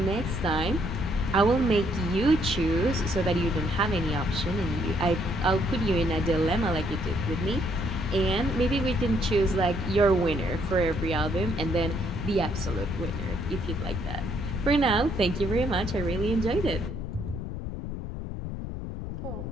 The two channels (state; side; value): noise; left; rumble, 6 dB below the sound